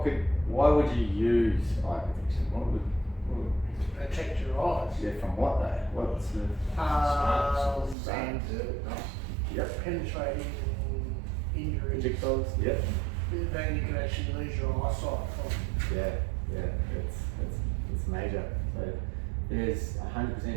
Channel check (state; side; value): drops out; left; at 8.0 s